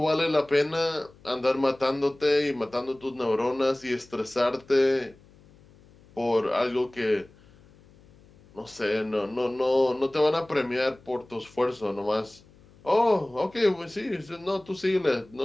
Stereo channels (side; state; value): left; noise; hum, 27 dB below the sound